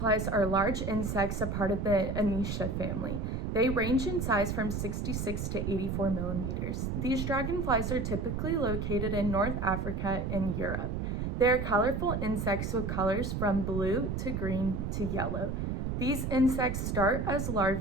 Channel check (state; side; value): noise; right; rumble, 2 dB below the sound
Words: are large insects, a part of the Anax family. They range in size from 66 to 84 millimeters. These dragonflies are typically located in North Africa and Europe. They are colorful insects with colors from blue to green to yellow. These insects start as